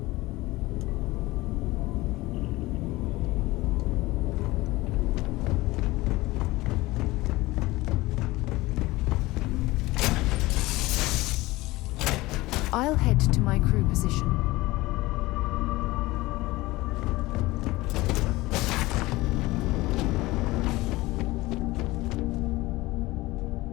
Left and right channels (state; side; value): quieter; right; 19.8 dB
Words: I'll head to my crew position.